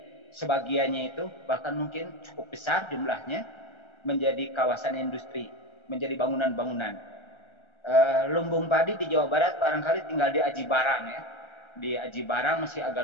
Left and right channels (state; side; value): late; right; 1.3 ms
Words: sebagiannya itu, bahkan mungkin cukup besar jumlahnya, menjadi kawasan industri, menjadi bangunan-bangunan. Lumbung padi di Jawa Barat barangkali tinggal di Aji Barang ya. Di Aji Barang masih